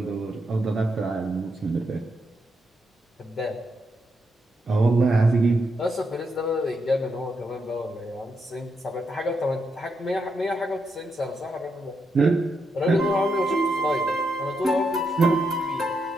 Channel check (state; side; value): normal; both; correlation 0.81